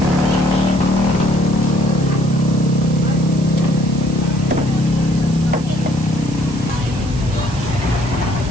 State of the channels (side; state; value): right; noise; hiss, 18 dB below the sound